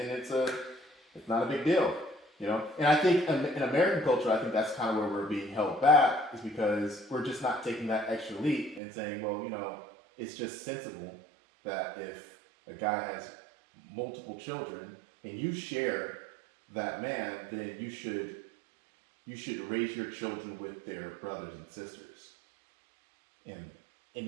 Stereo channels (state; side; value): drops out; left; at 8.8 s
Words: it's not a big deal, And I think in American culture, I think that's kind of where we're being held back, is because we're just not taking that extra leap and saying, well, it's just sensible that if a guy has multiple children and you share that man, then you should raise your children with their brothers and sisters, and